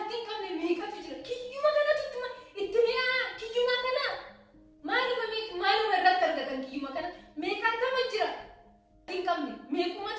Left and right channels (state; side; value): identical; both; correlation 1.00